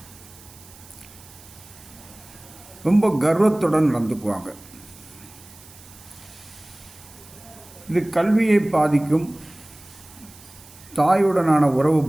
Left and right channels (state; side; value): noise; right; hiss, 22 dB below the sound